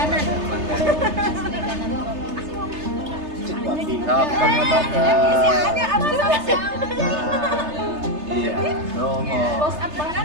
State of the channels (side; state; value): left; late; 3.3 ms